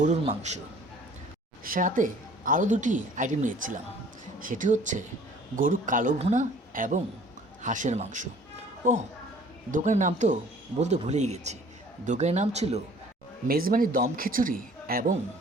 মাংস, সাথে আরও দুটি আইটেম নিয়েছিলাম। সেটি হচ্ছে গরুর কালো ভুনা এবং হাঁসের মাংস। ও, দোকানের নাম তো বলতে ভুলেই গেছি। দোকানের নাম ছিল মেজবানি দম খিচুড়ি এবং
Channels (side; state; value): both; normal; correlation 0.52